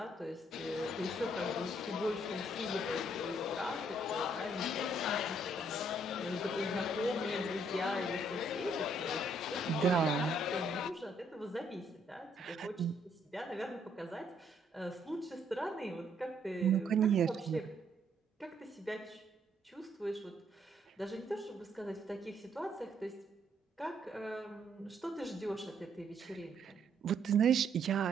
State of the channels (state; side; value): normal; both; correlation 0.69